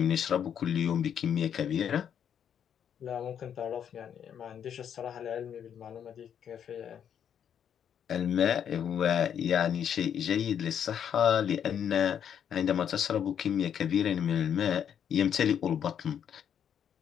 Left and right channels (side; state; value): right; quieter; 8.7 dB